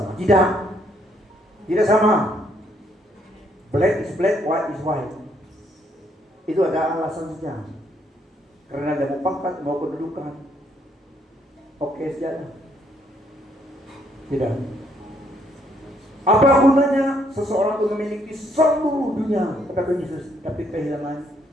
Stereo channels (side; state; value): both; normal; correlation 0.70